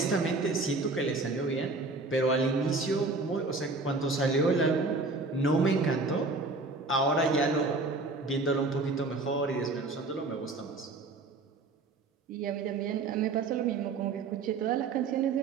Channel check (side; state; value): left; quieter; 3.6 dB